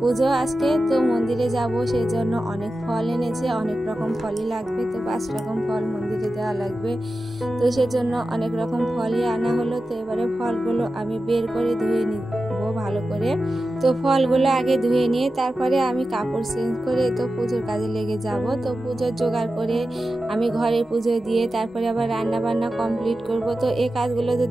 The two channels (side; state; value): both; normal; correlation 0.93